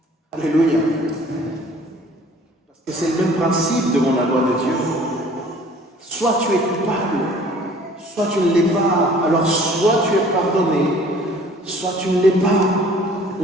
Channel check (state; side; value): normal; both; correlation 0.52